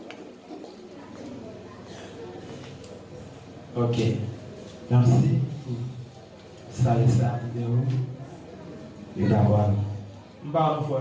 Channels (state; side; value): identical; both; correlation 1.00